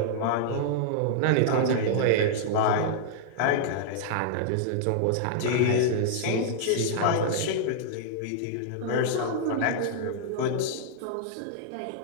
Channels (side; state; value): both; different; correlation -0.01